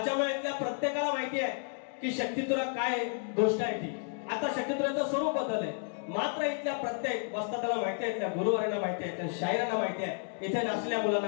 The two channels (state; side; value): silent; right; 57 dB below the other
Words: इथल्या प्रत्येकाला माहिती आहे की शक्तितुरा काय गोष्ट आहे ती. आता शक्तितुराचं स्वरूप बदललंय मात्र इथल्या प्रत्येक वस्तादाला माहिती आहे इथल्या गुरुवारांना माहिती आहे इथल्या शायरांना माहिती आहे इथे नाचलेल्या